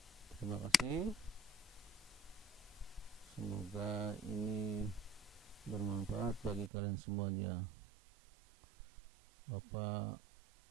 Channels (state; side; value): drops out; left; at 6.7 s